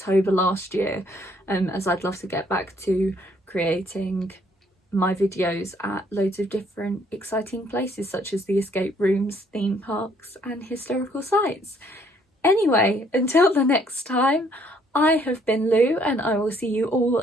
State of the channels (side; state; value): both; normal; correlation 0.65